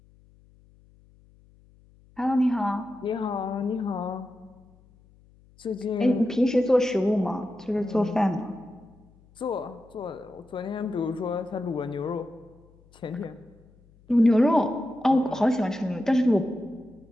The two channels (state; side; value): noise; left; hum, 28 dB below the sound